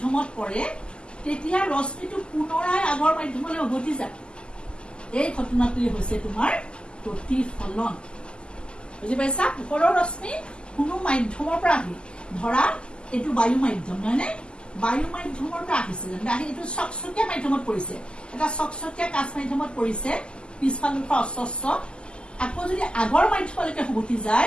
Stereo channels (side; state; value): right; late; 0.050 ms